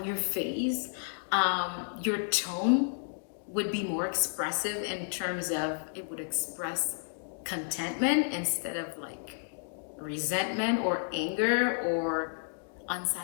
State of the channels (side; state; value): right; silent; digital silence